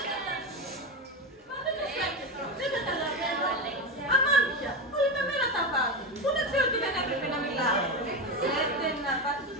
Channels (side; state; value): both; normal; correlation 0.16